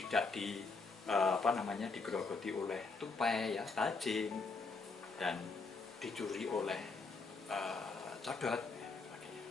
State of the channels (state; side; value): quieter; right; 4.1 dB